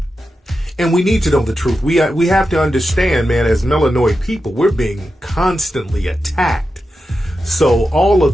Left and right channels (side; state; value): both; normal; correlation 0.90